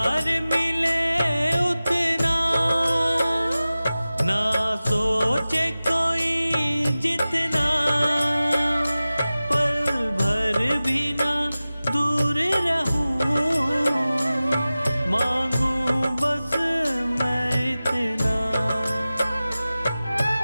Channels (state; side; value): inverted; both; correlation -0.97